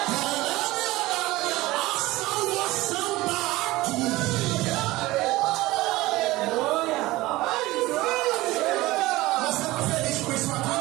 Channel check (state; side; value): quieter; left; 19.0 dB